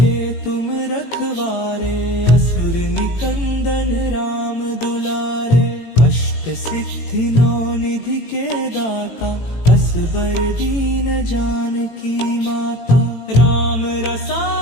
तुम रखवारे, असुर निकंदन राम दुलारे। अष्ट सिद्धि नौ निधि के दाता, असबर दीन जानकी माता। राम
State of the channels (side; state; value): right; late; 18 ms